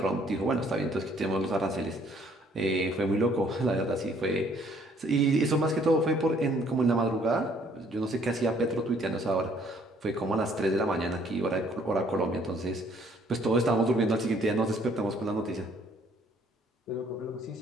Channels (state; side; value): normal; both; correlation 0.62